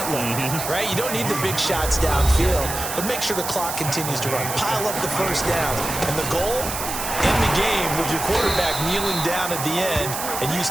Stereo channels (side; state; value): right; noise; hiss, 5 dB below the sound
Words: right? You don't need the big shots downfield, but make sure the clock continues to run. Pile up the first downs. And the goal, end the game with your quarterback kneeling down at the end, and you